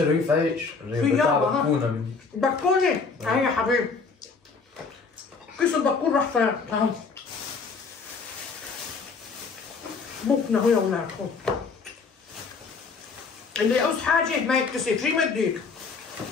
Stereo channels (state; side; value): quieter; right; 4.8 dB